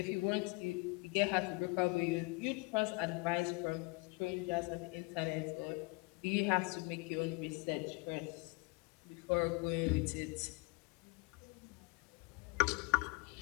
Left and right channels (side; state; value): right; quieter; 28.7 dB